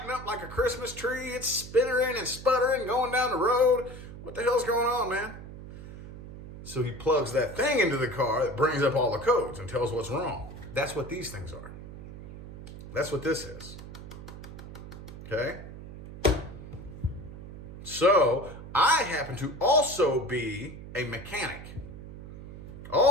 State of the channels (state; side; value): noise; right; hum, 13 dB below the sound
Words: up like a Christmas tree. It's spittering and sputtering going down the road. What the hell's going on, man? So he plugs that thing into the car that brings up all the codes and tells what's wrong. That's what these things are. That's what this is. Okay? So I happen to also be a mechanic.